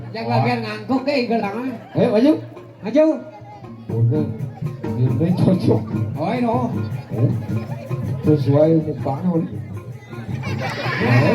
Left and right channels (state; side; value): identical; both; correlation 1.00